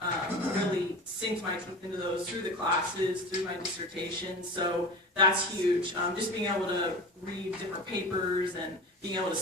really sink my teeth into those through the classes, through my dissertation. So that's huge. Just being able to read different papers and being able to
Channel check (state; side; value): normal; both; correlation 0.32